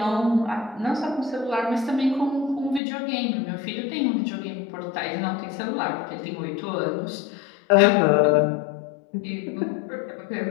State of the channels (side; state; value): right; drops out; at 2.8 s